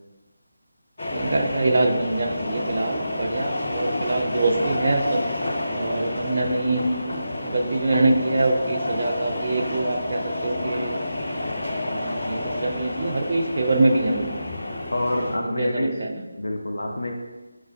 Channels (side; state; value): both; inverted; correlation -0.88